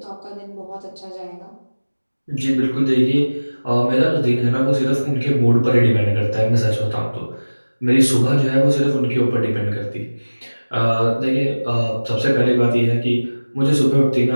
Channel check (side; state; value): both; inverted; correlation -1.00